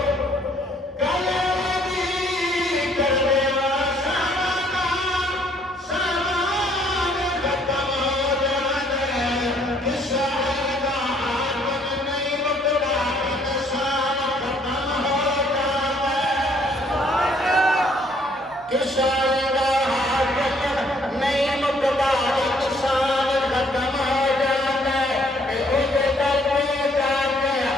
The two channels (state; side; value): normal; both; correlation 0.64